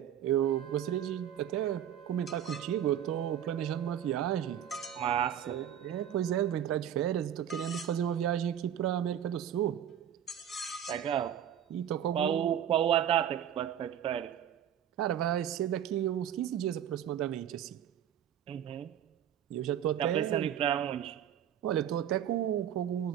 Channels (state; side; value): quieter; left; 10.1 dB